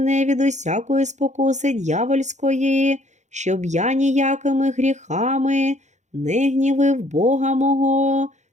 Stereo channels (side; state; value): left; late; 0.34 ms